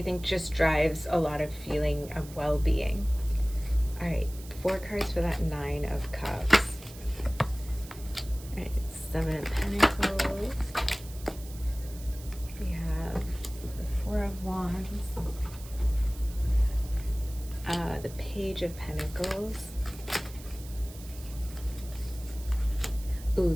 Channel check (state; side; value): noise; right; hiss, 18 dB below the sound